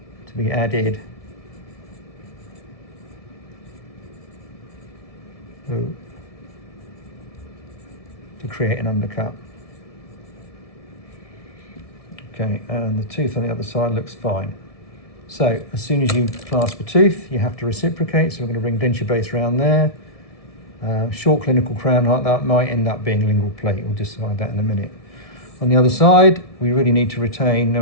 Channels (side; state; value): right; late; 1.6 ms